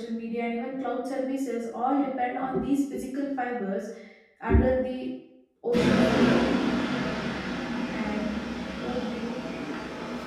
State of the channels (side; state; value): both; identical; correlation 1.00